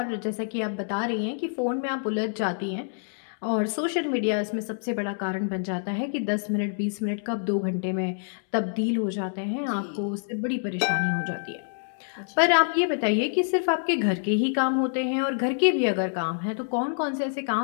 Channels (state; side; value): silent; right; digital silence